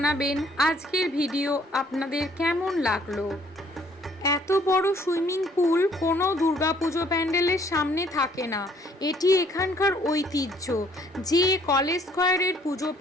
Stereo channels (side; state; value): both; normal; correlation 0.62